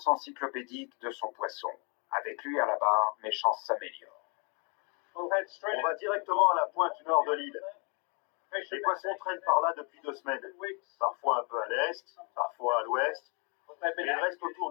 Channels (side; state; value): right; quieter; 35.3 dB